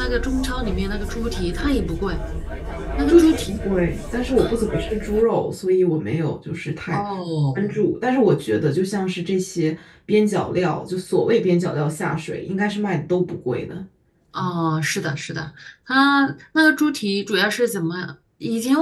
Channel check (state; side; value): identical; both; correlation 1.00